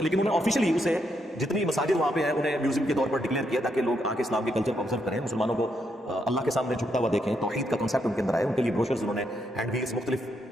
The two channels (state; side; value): normal; both; correlation 0.78